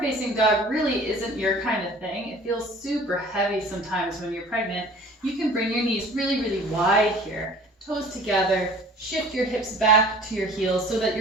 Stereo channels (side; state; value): both; normal; correlation 0.47